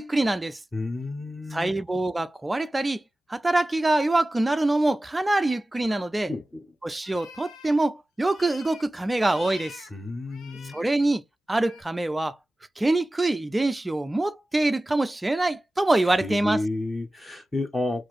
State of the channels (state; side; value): normal; both; correlation 0.96